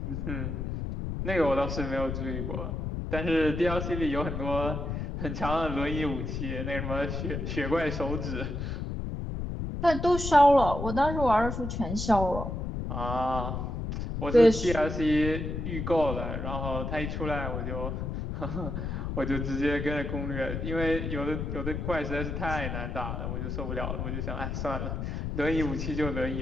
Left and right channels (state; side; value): noise; left; rumble, 4 dB below the sound